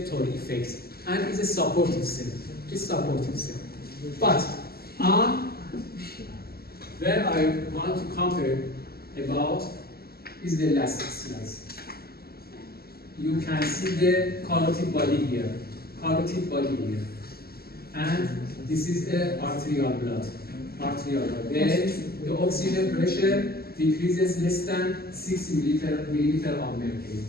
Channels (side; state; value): right; late; 0.45 ms